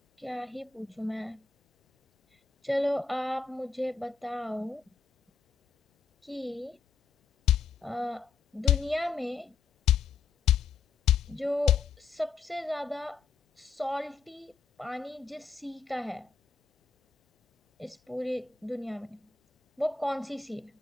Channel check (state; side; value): quieter; right; 5.5 dB